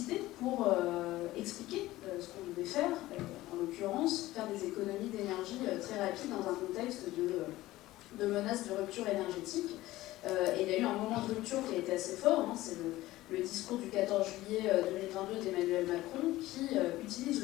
pour expliquer ce qu'on devait faire, en l'occurrence faire des économies d'énergie très rapides dans un contexte de menace de rupture énergétique. Et il y a eu un moment de rupture qui a été assez fort, c'est le discours du 14 juillet 2022 d'Emmanuel Macron qui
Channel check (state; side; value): quieter; right; 16.9 dB